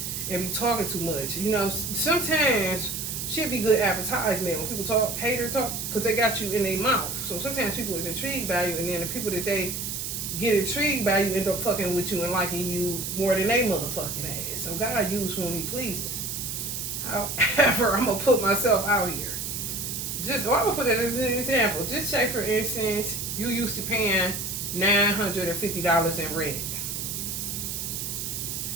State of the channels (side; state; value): right; noise; hiss, 4 dB below the sound